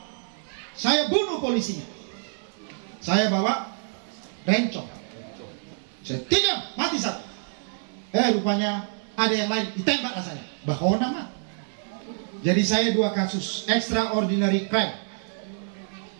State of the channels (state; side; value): silent; left; digital silence